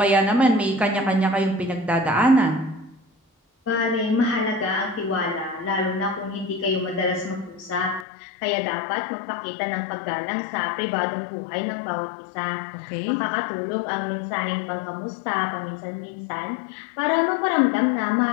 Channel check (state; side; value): drops out; right; at 8.1 s